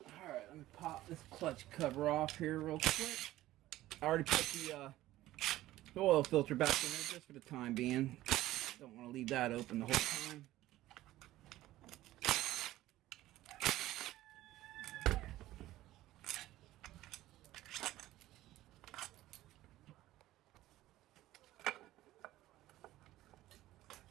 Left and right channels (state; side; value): quieter; left; 15.6 dB